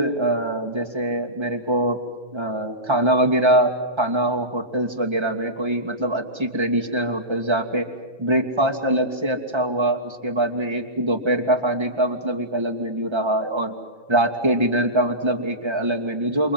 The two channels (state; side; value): late; left; 1.3 ms